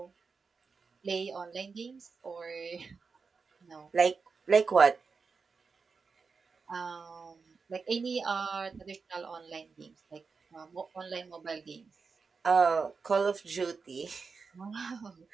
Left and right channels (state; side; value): quieter; left; 4.9 dB